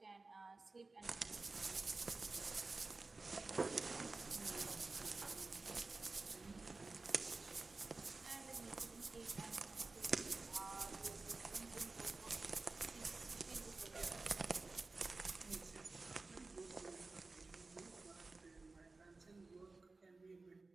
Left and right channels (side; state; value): left; quieter; 3.6 dB